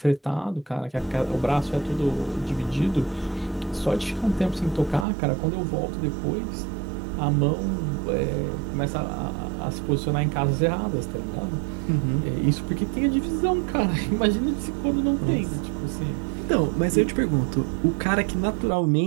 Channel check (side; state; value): left; drops out; at 5.1 s